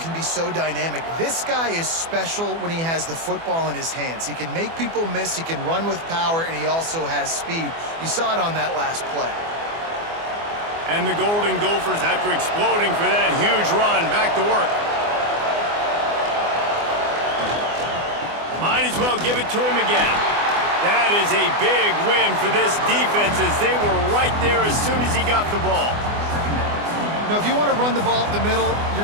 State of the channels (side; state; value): left; late; 24 ms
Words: be so dynamic. This guy is special when he has the football in his hands. He can make people miss, he can run with power, and he also has speed. You saw it on that last play. And the Golden Gophers, after exploding for that huge run, back to work. Might as well give it to him again. That is a big win for this defense as they were right there as soon as he got the ball. Now, if you want to run the ball up the middle,